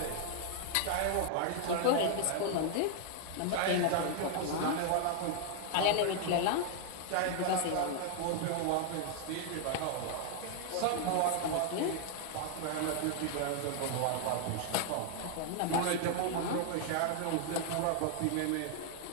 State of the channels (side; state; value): both; different; correlation 0.00